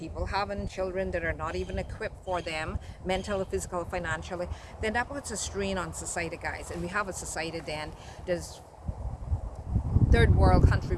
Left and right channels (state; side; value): identical; both; correlation 1.00